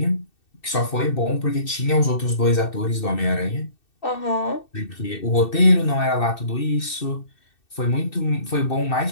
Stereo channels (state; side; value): late; right; 2.6 ms